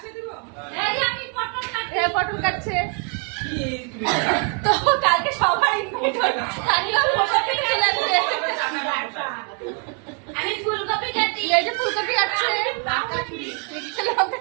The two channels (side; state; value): left; quieter; 37.8 dB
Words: পটল কাটছে তো কালকে সবার আমি ফুলকপি কাটি, এই যে ফুলকপি কাটছে, লঙ্কা